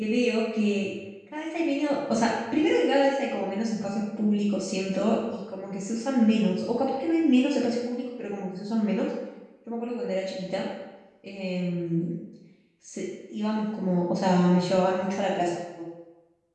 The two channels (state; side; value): identical; both; correlation 1.00